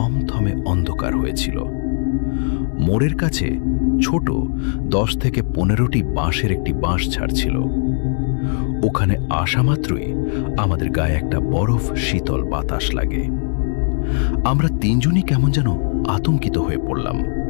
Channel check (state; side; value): silent; right; digital silence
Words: অন্ধকার হয়েছিল। মোড়ের কাছে ছোট 10 থেকে 15টি বাঁশের একটি বাঁশ ঝাড় ছিল। ওখানে আসা মাত্রই আমাদের গায়ে একটা বরফ শীতল বাতাস লাগে। আমরা 3 জনই কেমন যেন আতঙ্কিত হয়ে পড়লাম।